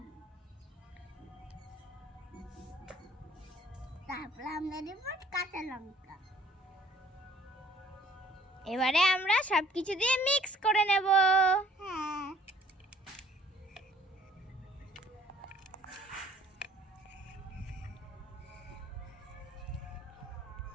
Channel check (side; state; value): both; normal; correlation 0.56